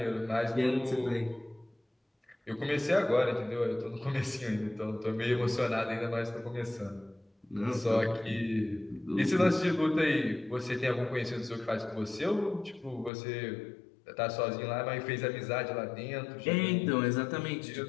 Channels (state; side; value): drops out; right; at 13.1 s